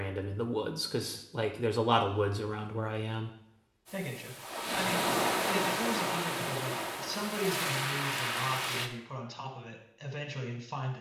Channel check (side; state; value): both; identical; correlation 1.00